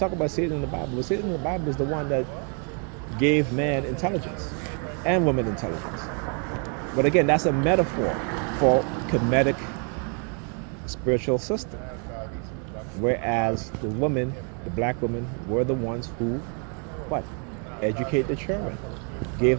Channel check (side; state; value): left; quieter; 39.4 dB